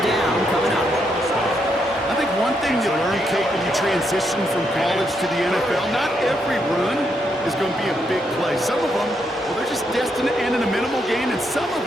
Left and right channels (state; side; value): normal; both; correlation 0.78